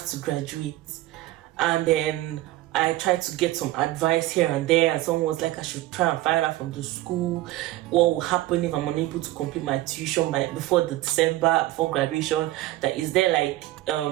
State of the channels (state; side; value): quieter; left; 16.6 dB